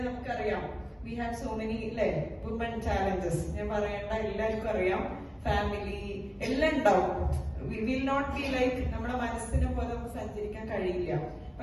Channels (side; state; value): both; identical; correlation 1.00